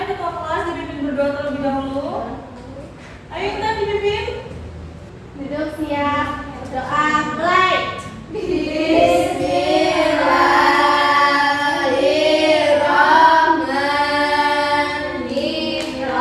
ketua kelas dipimpin berdoa terlebih dahulu. Ayo Intan dipimpin. Duduk siap. Doa mulai.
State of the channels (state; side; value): identical; both; correlation 1.00